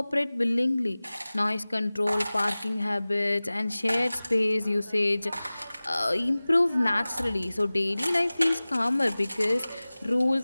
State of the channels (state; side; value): inverted; both; correlation -0.99